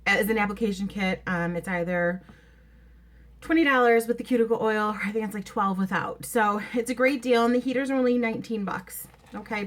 an application kit. It's either $20 with the cuticle oil, or I think it's like $12 without. So it's a great deal, and the heaters are only 19 bucks. Okay,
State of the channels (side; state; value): both; identical; correlation 1.00